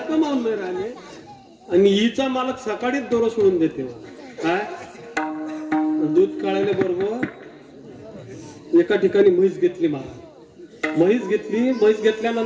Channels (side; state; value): both; identical; correlation 1.00